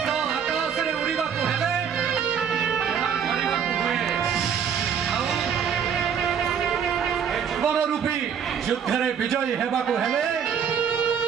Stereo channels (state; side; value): quieter; left; 7.6 dB